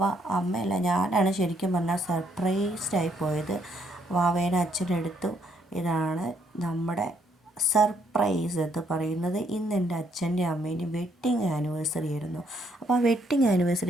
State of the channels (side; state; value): both; normal; correlation 0.71